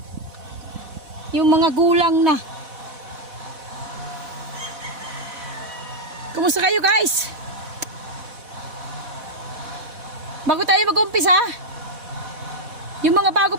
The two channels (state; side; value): late; left; 4.1 ms